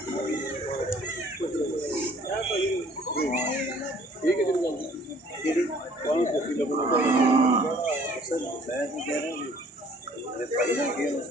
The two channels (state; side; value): normal; both; correlation 0.56